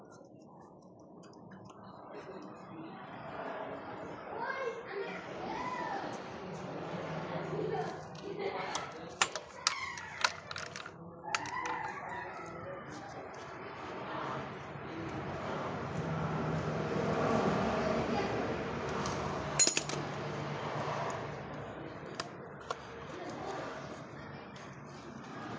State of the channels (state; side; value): identical; both; correlation 1.00